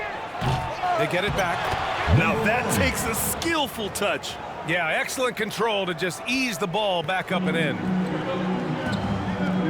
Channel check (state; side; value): identical; both; correlation 1.00